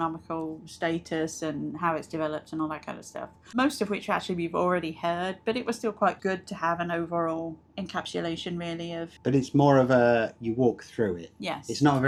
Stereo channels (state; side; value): identical; both; correlation 1.00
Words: status and how it's developed and all that kind of stuff. Most of which actually we've already heard, but it was still quite good to have an overall encapsulation really of... But it's more of a, you walk through it. Yes. It's not